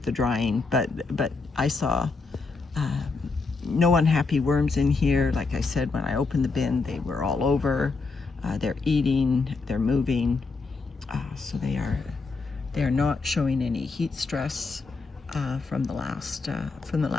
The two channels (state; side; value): quieter; right; 4.1 dB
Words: the drying. But I saw no unhappy worms in here. Like I said, when I opened the bin, they were all over. They're eating, they're moving, so they are not showing any heat stress from the last